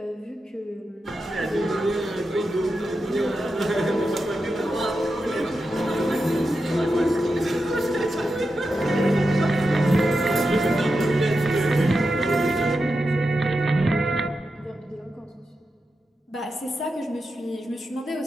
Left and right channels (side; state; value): both; normal; correlation 0.89